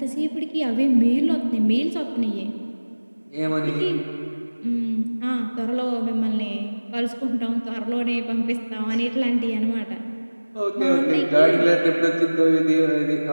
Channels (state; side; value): inverted; both; correlation -1.00